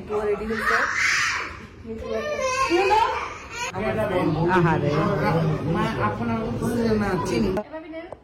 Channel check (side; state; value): both; identical; correlation 1.00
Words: রেডি হচ্ছে। আহারে